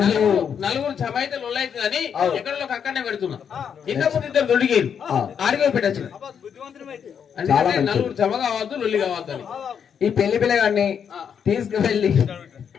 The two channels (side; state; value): right; quieter; 7.6 dB